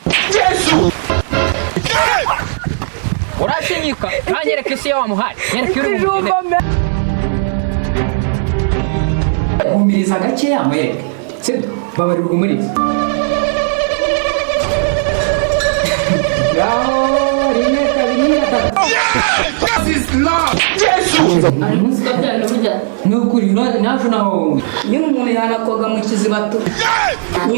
Yesu urashinyika kanyereka isi yawe muhari nyereka uri umugene umiriza gake yamwereka sibyo babarira umuriza Gao rimwe kabiri gatatu This is love Yesu ari musika byane burya nukuri naje naho nyine umuntu yanakoga mu kizibato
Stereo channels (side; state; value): left; silent; digital silence